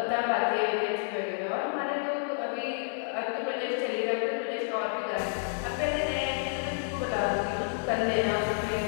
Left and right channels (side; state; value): right; silent; 58 dB below the other